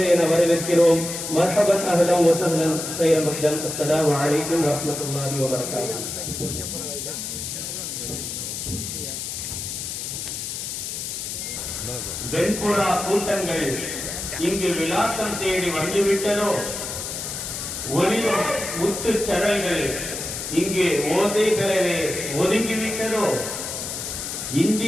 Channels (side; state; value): left; noise; hiss, 5 dB below the sound